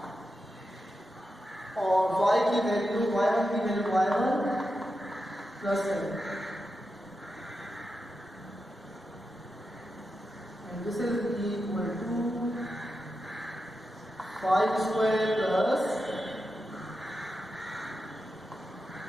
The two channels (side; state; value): both; normal; correlation 0.89